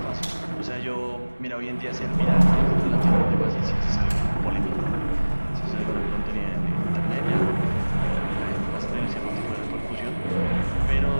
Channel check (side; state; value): both; inverted; correlation -1.00